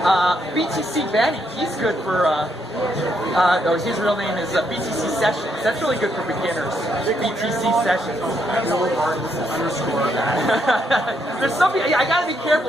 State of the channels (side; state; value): both; normal; correlation 0.76